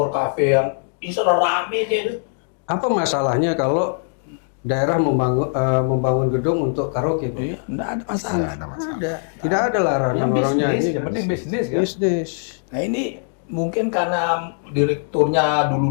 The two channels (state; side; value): silent; right; 65 dB below the other